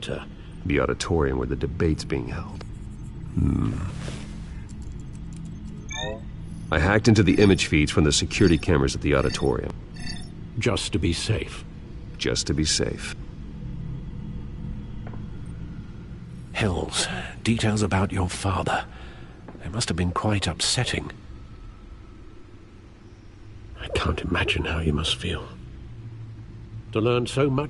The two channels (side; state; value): both; identical; correlation 1.00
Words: The auditorium where the debate's being held. I hacked into the image feeds from the security cameras at the auditorium. Just to be safe. Just to be safe. Hills, details about your father. They must have been quite upsetting. I can't imagine how you must feel. To learn so